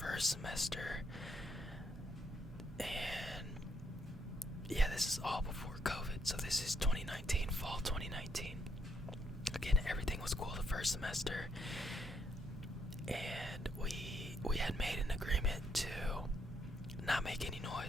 semester, and yeah, this is all before COVID, so this is 2019, fall 2019. Again, everything was cool the first semester, and we had made an agreement to not make any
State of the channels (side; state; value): both; normal; correlation 0.75